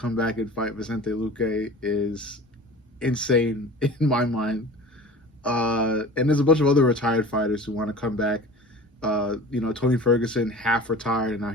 back and fight Vicente Luque is insane in my mind. And there's a bunch of other retired fighters who want to come back. Tony Ferguson half retired and now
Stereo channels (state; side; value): normal; both; correlation 0.39